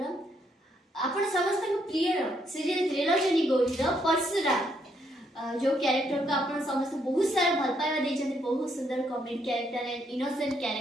आपण समस्त प्रिय सीरियल त्रिलोचनी गौरीर परशुराम जो कैरेक्टर को आप समस्त बहुत सारा भल पाइबा देते बहुत सुंदर comedy character and innocent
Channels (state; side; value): normal; both; correlation 0.74